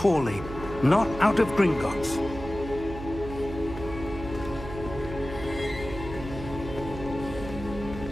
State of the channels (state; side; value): noise; right; hum, 10 dB below the sound